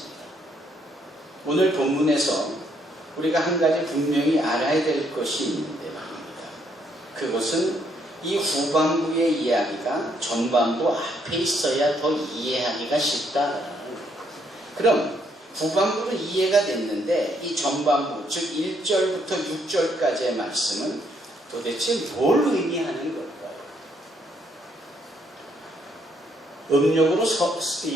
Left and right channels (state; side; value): normal; both; correlation 0.71